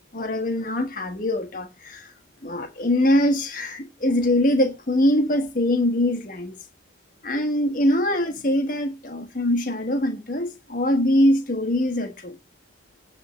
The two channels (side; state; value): both; normal; correlation 0.56